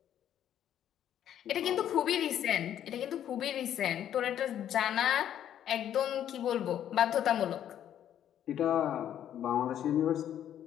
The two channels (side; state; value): right; quieter; 10.5 dB